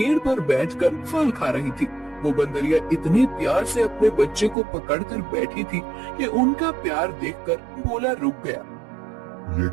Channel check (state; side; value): drops out; left; at 4.5 s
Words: पर बैठकर फल खा रही थी। वो बंदरिया इतने प्यार से अपने बच्चे को पकड़कर बैठी थी कि उनका प्यार देखकर भोला रुक गया। ये